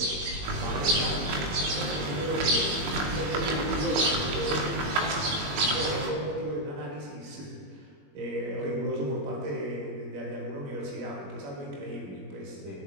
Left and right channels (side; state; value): left; late; 21 ms